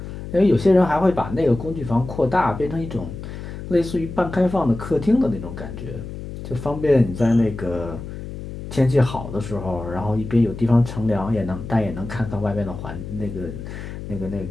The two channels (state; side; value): noise; left; hum, 10 dB below the sound